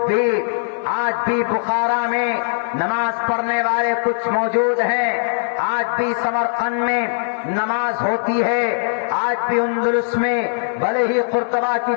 بھی آج بھی بخارا میں نماز پڑھنے والے کچھ موجود ہیں، آج بھی سمرقند میں نماز ہوتی ہے، آج بھی اندلس میں بھلے ہی قرطبہ کی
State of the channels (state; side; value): silent; right; 66 dB below the other